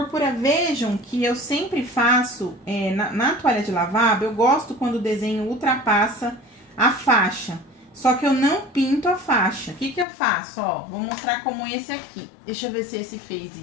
Vejam que eu sempre faço, na toalha de lavabo, eu gosto quando o desenho ultrapassa a faixa. Só que eu não pinto a faixa. O que eu faço? Ó, vou mostrar como esse aqui. Deixa eu ver se esse fez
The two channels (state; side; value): drops out; right; at 10.1 s